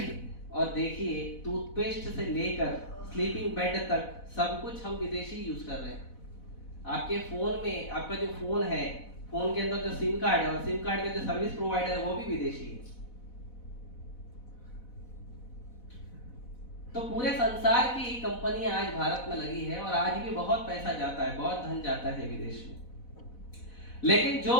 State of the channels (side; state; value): right; late; 4.1 ms